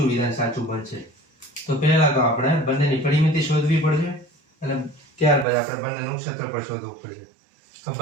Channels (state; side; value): drops out; left; at 5.5 s